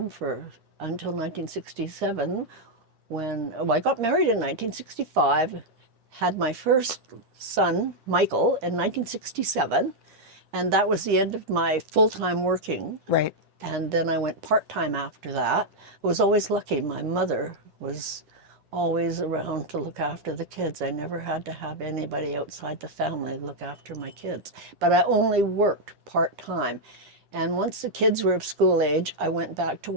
until 1967, when I got married in 1965, had my first son, Michael, in 1967, and that was the end of my full-time working. Right. And then I went part-time after that. I was always lucky. My mother was always around to look after the kids. I never had to have anybody outside the family look after my kids. But I only worked part-time. And once the kids were of school age, I went back to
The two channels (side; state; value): left; late; 10 ms